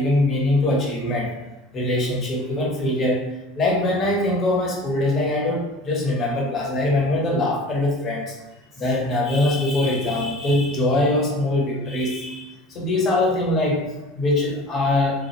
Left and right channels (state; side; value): normal; both; correlation 0.43